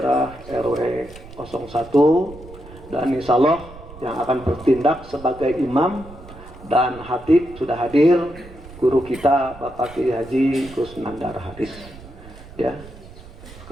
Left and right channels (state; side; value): noise; right; rumble, 18 dB below the sound